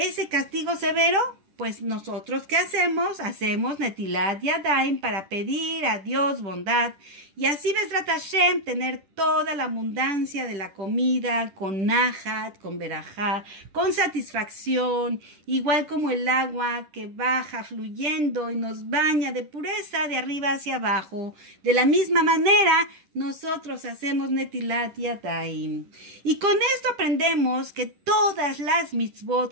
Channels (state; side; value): late; left; 10 ms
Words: castigo severo. Pues nosotros, ¿qué hacemos? Hacemos Netilat Yadayim para pedir a Dios bondad y así Bezrat Hashem tener toda la abundancia de la comida con nahat, con berajá, con satisfacción, igual como el agua que baja fluyendo y nos baña de pureza de arriba hacia abajo. De la misma manera, nosotros hacemos Netilat Yadayim. Y con esto aprendemos que todas las